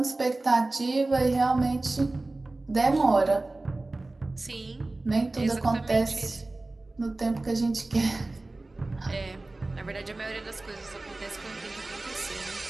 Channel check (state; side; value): quieter; left; 3.0 dB